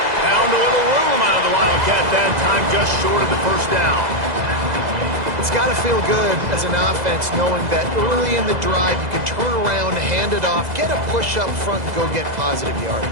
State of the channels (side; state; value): left; late; 2.0 ms